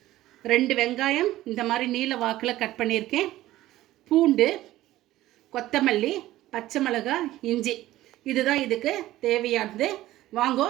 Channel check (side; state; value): left; quieter; 15.5 dB